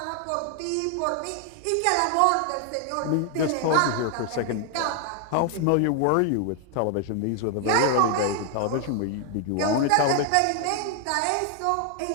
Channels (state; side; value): different; both; correlation 0.00